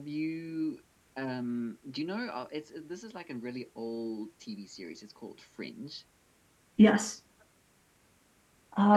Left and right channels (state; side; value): identical; both; correlation 1.00